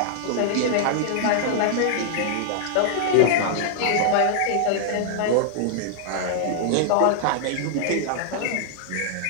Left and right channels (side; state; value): both; different; correlation -0.01